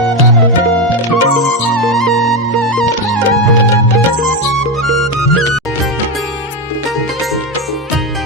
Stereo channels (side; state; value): both; normal; correlation 0.12